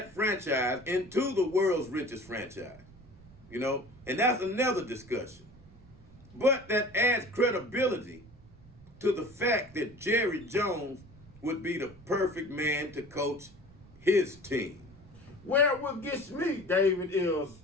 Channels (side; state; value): right; noise; rumble, 23 dB below the sound